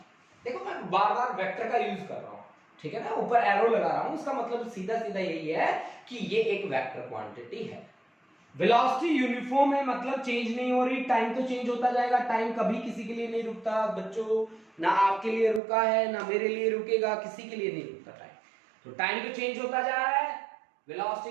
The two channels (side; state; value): left; drops out; at 15.6 s